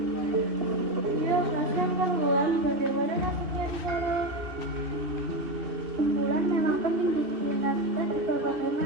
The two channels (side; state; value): left; late; 2.6 ms